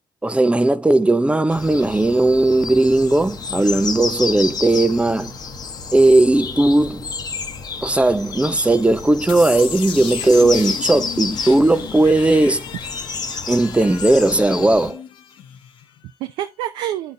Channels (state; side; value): normal; both; correlation 0.89